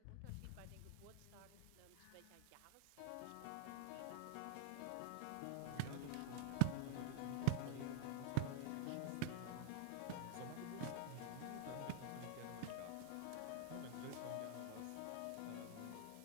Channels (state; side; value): different; both; correlation 0.01